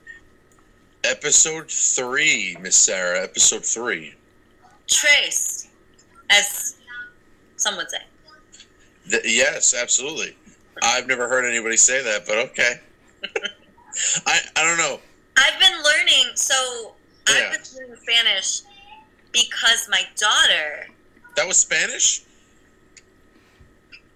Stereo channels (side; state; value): both; identical; correlation 1.00